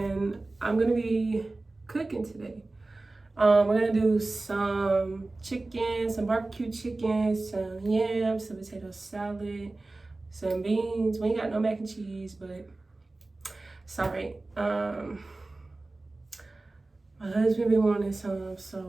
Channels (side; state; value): left; quieter; 3.1 dB